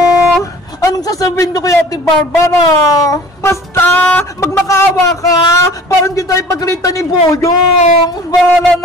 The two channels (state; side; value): normal; both; correlation 0.46